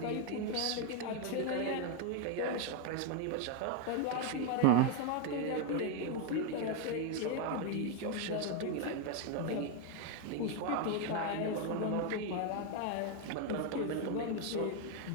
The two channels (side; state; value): both; different; correlation 0.01